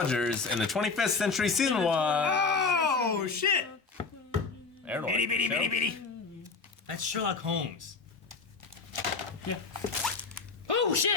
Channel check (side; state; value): right; quieter; 4.6 dB